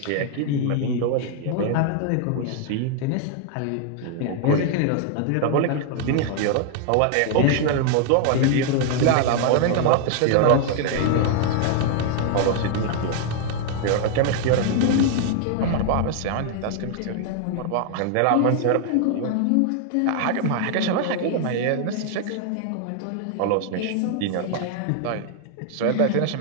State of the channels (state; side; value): different; both; correlation 0.00